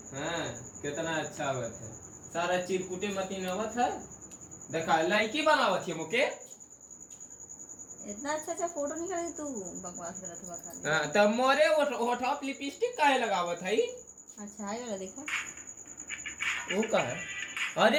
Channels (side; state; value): both; identical; correlation 1.00